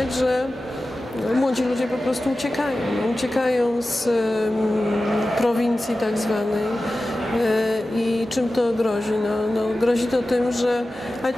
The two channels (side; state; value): both; normal; correlation 0.95